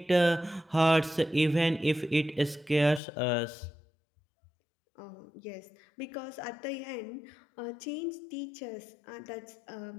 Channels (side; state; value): right; drops out; at 3.0 s